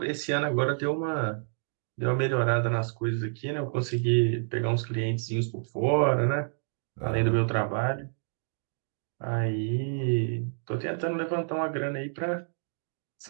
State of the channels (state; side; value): silent; left; digital silence